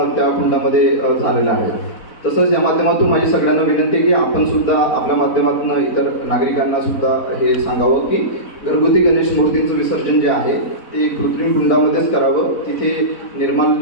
त्या कुंडामध्ये झालेलं आहे. तसंच या माध्यमातून माझी सगळ्यांना विनंती आहे की आपण सुद्धा आपल्या माध्यमातून इतर नागरिकांना सुद्धा हे सांगावं की घरगुती गणेश मूर्तींचं विसर्जन जे आहे ते कृत्रिम कुंडामध्येच करावं. तिथे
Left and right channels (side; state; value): right; late; 4.0 ms